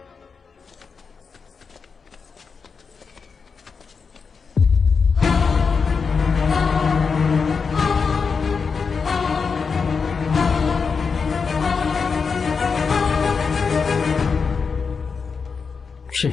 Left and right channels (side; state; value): right; quieter; 5.4 dB